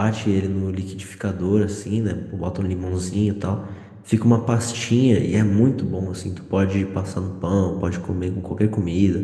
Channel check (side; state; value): both; identical; correlation 1.00